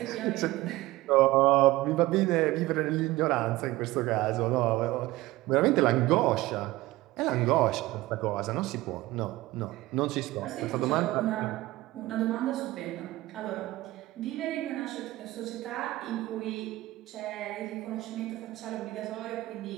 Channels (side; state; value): left; quieter; 18.2 dB